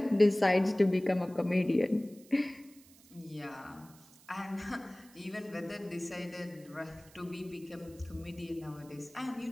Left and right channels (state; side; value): noise; right; hiss, 25 dB below the sound